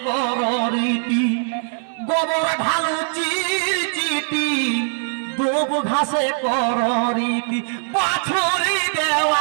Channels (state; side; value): silent; left; digital silence